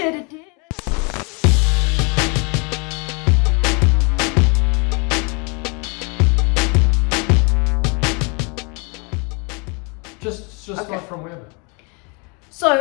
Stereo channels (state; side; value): quieter; right; 32.6 dB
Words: Just start from wherever.